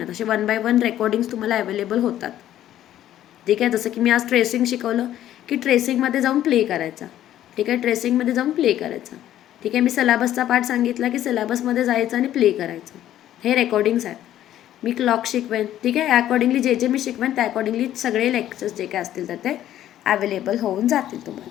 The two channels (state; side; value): quieter; right; 12.3 dB